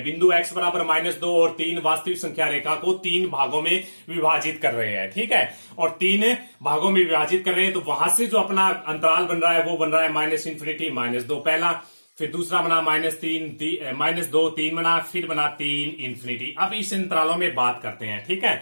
बिंदु x बराबर -2 और 3 वास्तविक संख्या रेखा को 3 भागों में विभाजित कर रहे हैं, ठीक है। और 3 भागों में विभाजित कर रहे हैं तो वहां से जो अपना अंतराल बन रहा है वो बन रहा है -इन्फिनिटी -2 पहला, फिर दूसरा बना -2 3 बना, फिर बना 3 इन्फिनिटी। अब इस अंतरालों में बात करते हैं, ठीक है।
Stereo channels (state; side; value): inverted; both; correlation -1.00